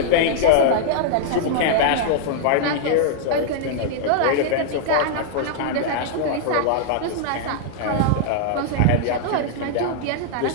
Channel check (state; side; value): different; both; correlation -0.01